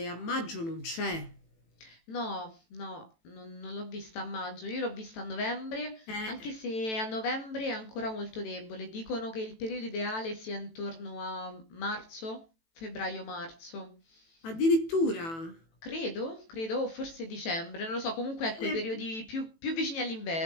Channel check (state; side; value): late; right; 18 ms